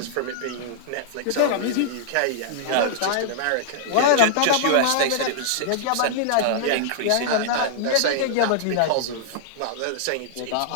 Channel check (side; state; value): both; different; correlation -0.02